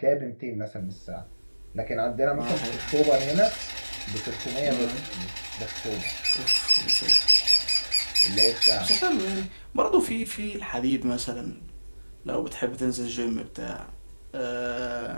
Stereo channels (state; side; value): inverted; both; correlation -1.00